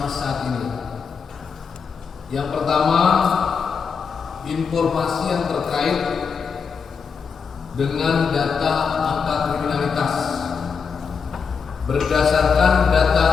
saat ini. Yang pertama, informasi yang terkait dengan data angka kriminalitas. Berdasarkan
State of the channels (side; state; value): right; quieter; 5.9 dB